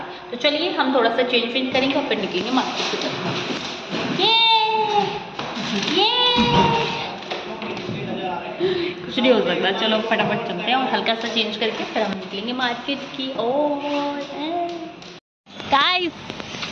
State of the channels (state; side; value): identical; both; correlation 1.00